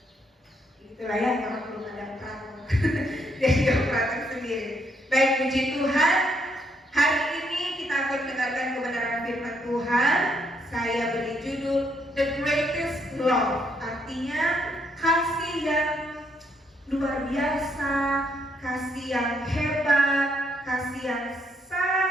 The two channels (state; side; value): normal; both; correlation 0.73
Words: itulah ya, orang belum ada praktek. Jadi dia praktek sendiri. Baik, puji Tuhan. Hari ini kita akan mendengarkan kebenaran firman Tuhan. Saya beri judul The Greatest Love, artinya kasih yang luar biasa, kasih yang hebat, kasih yang